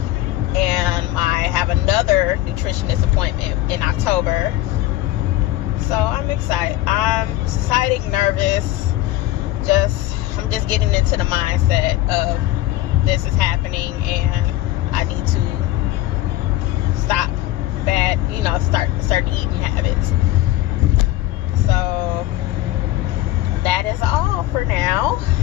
and I have another nutritionist appointment in October. So I'm excited. I'm excited, nervous. I'm just getting into the mindset of this is happening, and I need to stop bad, start eating habits. So that is all for now.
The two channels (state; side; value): quieter; right; 15.5 dB